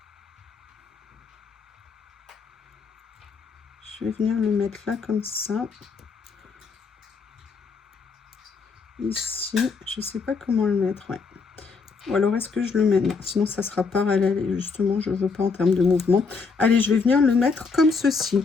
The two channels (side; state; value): right; quieter; 4.8 dB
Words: Je vais venir le mettre là comme ça. Ici, je sais pas comment le mettre, ouais. Ou alors est-ce que je le mets? Non, sinon ça sera parallèle et justement je veux pas en termes de mouvement. Allez, je vais venir le mettre comme ceci.